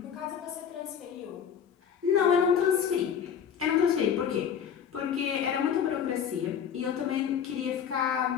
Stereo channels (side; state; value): right; quieter; 8.0 dB